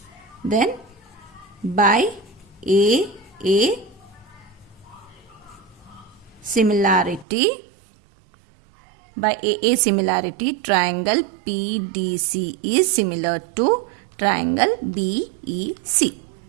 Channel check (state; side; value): drops out; left; at 7.2 s